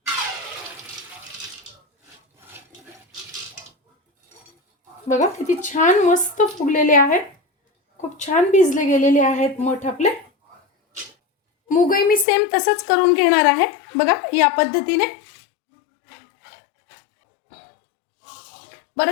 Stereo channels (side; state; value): right; drops out; at 12.2 s